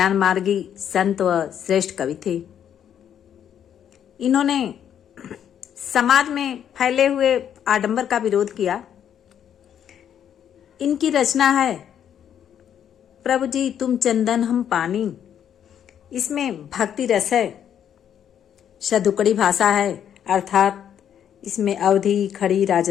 मार्गी संत व श्रेष्ठ कवि थे। इन्होंने समाज में फैले हुए आडंबर का विरोध किया। इनकी रचना है प्रभु जी तुम चंदन हम पानी। इसमें भक्ति रस है, शतुकड़ी भाषा है, अर्थात इसमें अवधी, खड़ी,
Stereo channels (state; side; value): quieter; right; 9.3 dB